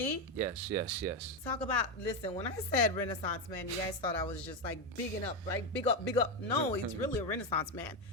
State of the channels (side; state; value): both; normal; correlation 0.09